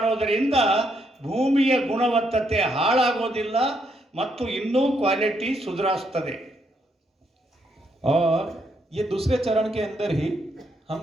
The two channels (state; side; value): normal; both; correlation 0.76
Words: ಭೂಮಿಯ ಗುಣವತ್ತತೆ ಹಾಳಾಗೋದಿಲ್ಲ ಮತ್ತು ಇನ್ನೂ ಕ್ವಾಲಿಟಿ ಸುಧಾರಿಸ್ತದೆ. और ये दूसरे चरण के अंदर ही हम